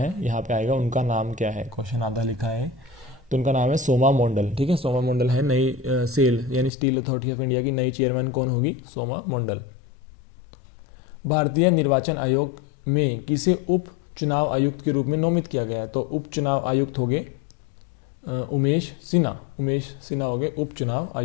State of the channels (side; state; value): right; drops out; at 6.7 s